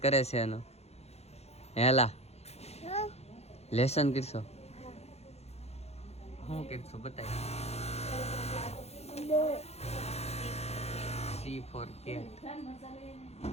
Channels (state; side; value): late; right; 0.31 ms